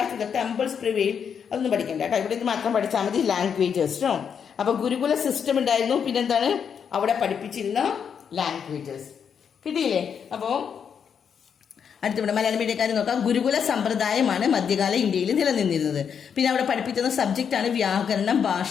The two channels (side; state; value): right; quieter; 7.3 dB